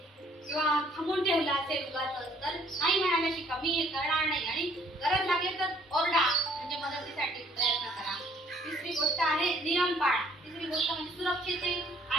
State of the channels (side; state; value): both; normal; correlation 0.61